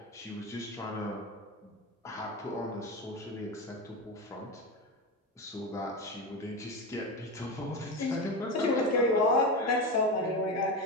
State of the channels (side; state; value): both; normal; correlation 0.20